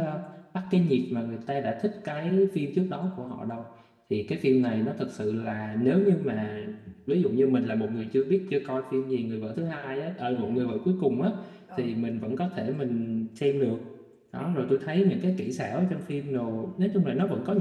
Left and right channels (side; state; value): both; identical; correlation 1.00